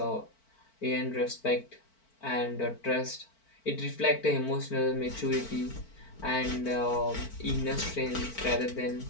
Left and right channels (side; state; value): right; late; 4.5 ms